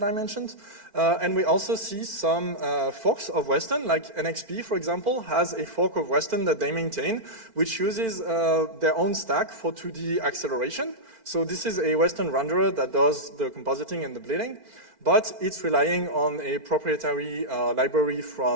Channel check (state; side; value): late; left; 4.4 ms